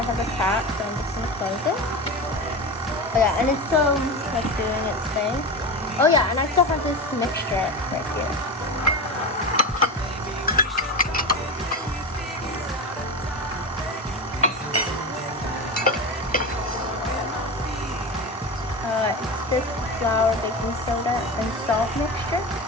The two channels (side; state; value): both; normal; correlation 0.23